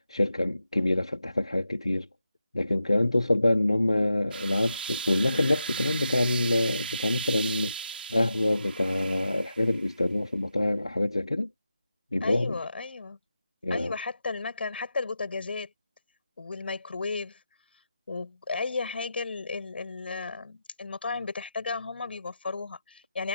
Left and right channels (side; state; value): both; inverted; correlation -0.89